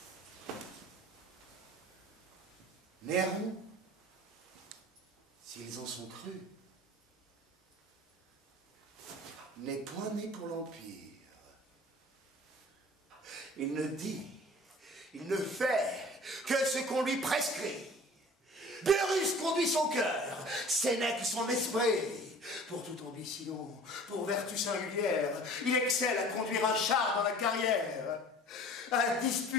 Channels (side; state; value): both; normal; correlation 0.45